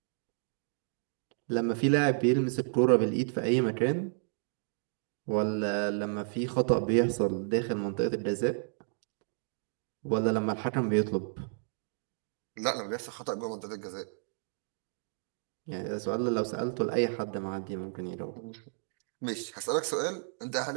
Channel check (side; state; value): left; silent; digital silence